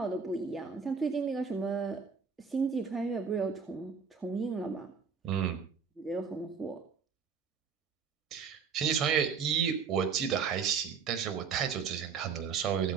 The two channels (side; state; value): left; quieter; 6.0 dB